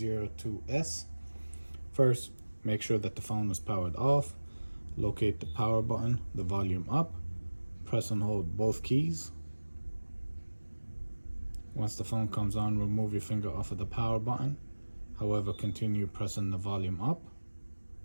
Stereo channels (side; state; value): both; inverted; correlation -1.00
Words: First, make sure that the phone is powered off. Locate the power button, the volume up, press and hold both keys. Once the phone comes on, remove your finger off of the power button. However, continue pressing the volume up.